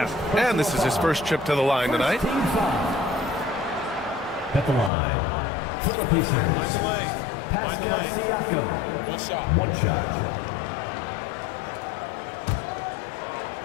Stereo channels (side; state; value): right; drops out; at 4.9 s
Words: And this is his first trip to the line tonight. At the line, for the Pacers, Pascal Siakam. One shot.